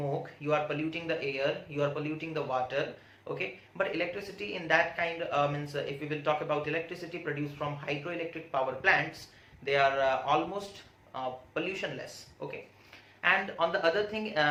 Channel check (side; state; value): both; identical; correlation 1.00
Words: you are polluting the air, you are polluting the water, okay. But electricity in that kind if we will talk about electricity produced from hydroelectric power plants, they are almost pollutionless, okay. And on the other thing,